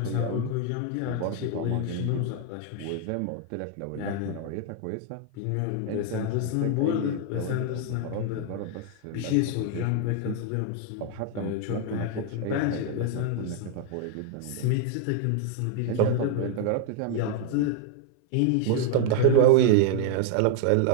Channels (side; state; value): both; different; correlation 0.00